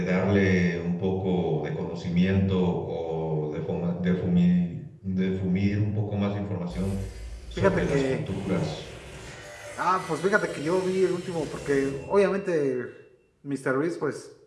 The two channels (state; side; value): identical; both; correlation 1.00